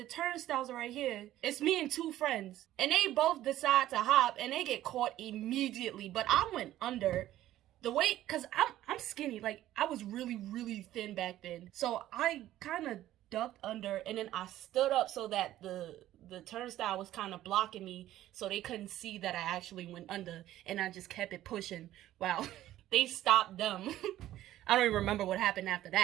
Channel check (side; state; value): left; quieter; 13.8 dB